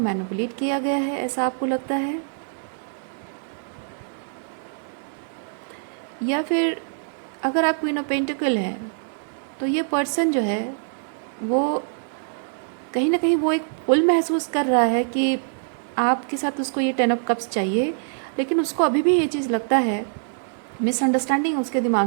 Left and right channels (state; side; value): silent; left; digital silence